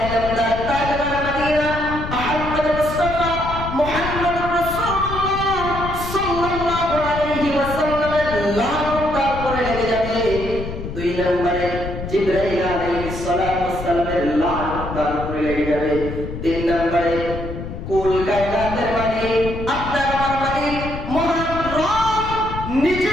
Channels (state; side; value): noise; left; rumble, 8 dB below the sound